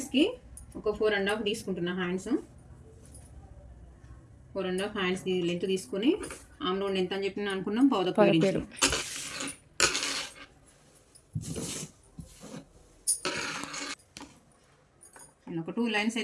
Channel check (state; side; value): identical; both; correlation 1.00